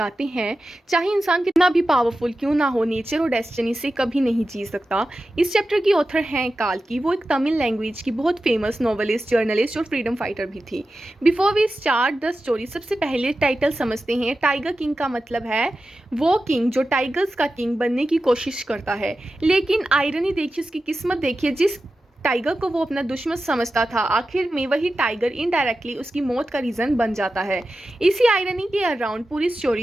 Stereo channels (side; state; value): both; normal; correlation 0.93